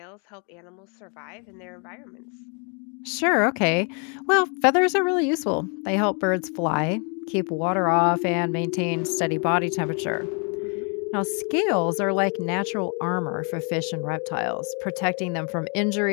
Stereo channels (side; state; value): right; quieter; 37.0 dB